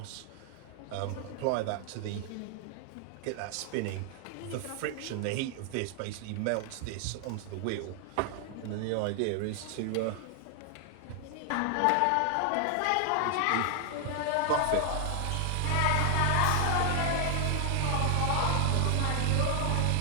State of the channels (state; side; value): different; both; correlation 0.00